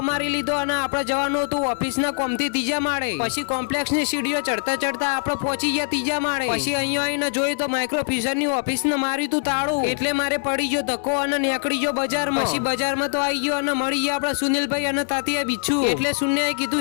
મારી લીધો અને આપણે જવાનું હતું ઓફિસના કોમથી ત્રીજા માળે. પછી કોમ્પ્લેક્સની સીડીઓ ચડતા ચડતા આપણે પહોંચી ગયા ત્રીજા માળે. પછી અહીંયા આવીને જોયું તો માઇક્રો ફ્યુઝનની ઓફિસને માર્યું તું તાળું. એટલે મારે પડી ગયો ધક્કો અને નીકળી ગયો બજારમાં. પછી બજારમાં તો આવી ગયો અને મળી ગયા આપણા સુનિલભાઈ અને તાતિયા બિચ્છુ. એટલે શૂન્યએ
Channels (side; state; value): right; silent; digital silence